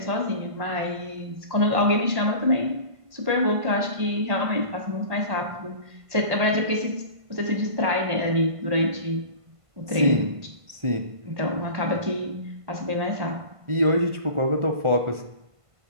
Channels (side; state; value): left; late; 1.5 ms